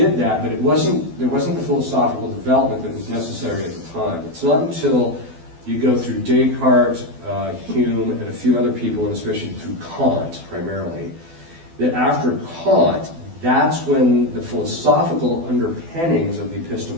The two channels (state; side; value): late; left; 12 ms